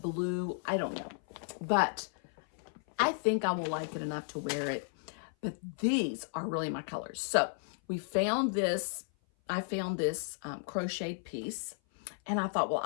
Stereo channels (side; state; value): right; silent; 55 dB below the other